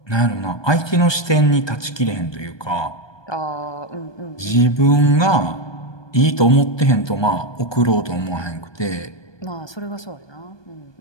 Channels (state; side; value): late; right; 1.2 ms